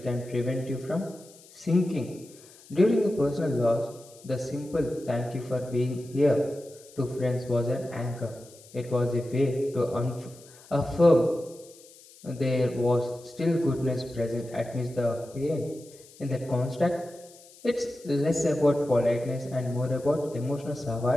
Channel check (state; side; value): noise; left; hiss, 23 dB below the sound